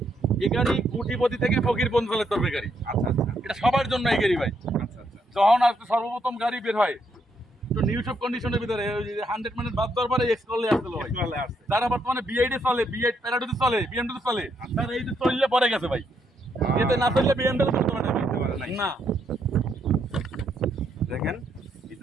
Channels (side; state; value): both; normal; correlation 0.75